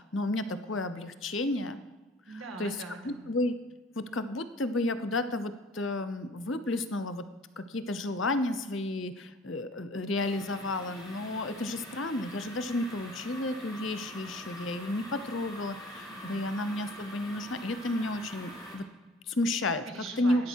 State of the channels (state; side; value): normal; both; correlation 0.50